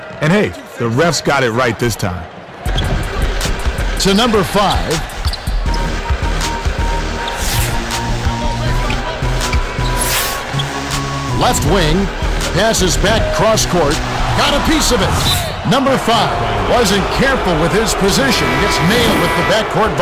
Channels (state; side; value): identical; both; correlation 1.00